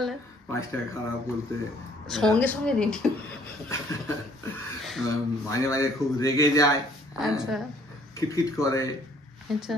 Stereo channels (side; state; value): both; normal; correlation 0.60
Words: 5টা খারাপ বলতে সঙ্গে সঙ্গে রেডি। মাঝে মাঝে খুব রেগে যায়, আচ্ছা খিটখিট করে। আচ্ছা,